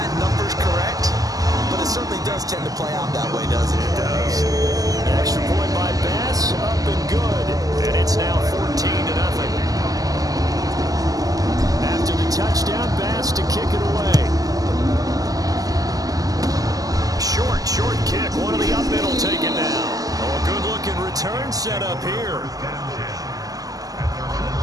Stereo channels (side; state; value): left; late; 0.17 ms